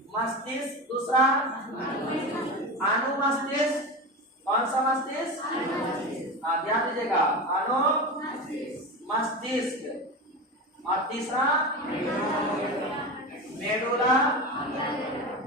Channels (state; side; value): normal; both; correlation 0.24